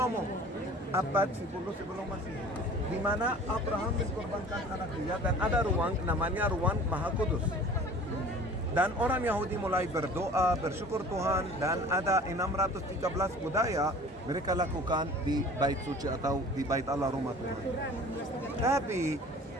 Abad 10 sebelum Masehi. Di mana Abraham mengkorbankan anak dia dan ada ruang namanya ruang Maha Kudus. Dan orang Yahudi mulai berdoa, bersyukur Tuhan, dan ada 613 budaya mereka lakukan di bait suci atau di bait Allah rumah Tuhan. Tapi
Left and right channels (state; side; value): normal; both; correlation 0.45